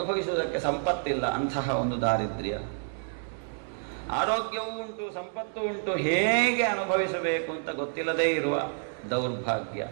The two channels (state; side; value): silent; left; 59 dB below the other